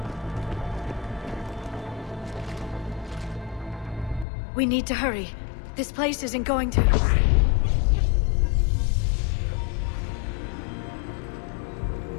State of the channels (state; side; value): drops out; right; at 4.2 s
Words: We need to hurry. This place isn't going to...